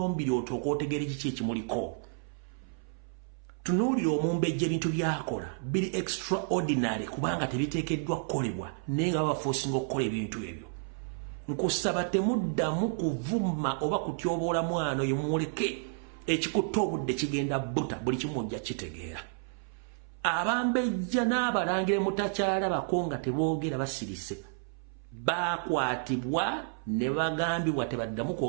otooka otegeera kiki ekimuliko tunuulira omumbejja ebintu byakola biri extraordinary kubanga tebiteekeddwa kukolebwa naye nga babaforcinga okukola ebintu ebyo nkusaba temuddamu kuvuma oba kutyoboola mwana oyo muleke ekikutta obudde kigenda buta buli kimu ojja kitegeera abambejja n'abalangira mutakyalabako nga teboogera basirise bakwatibwa ne bagambibwa tebaddamu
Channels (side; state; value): left; silent; 57 dB below the other